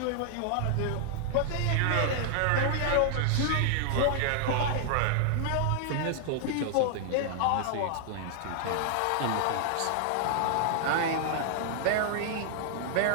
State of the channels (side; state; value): both; different; correlation -0.01